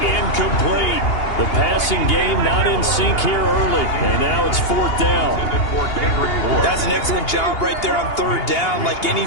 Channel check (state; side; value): late; right; 2.8 ms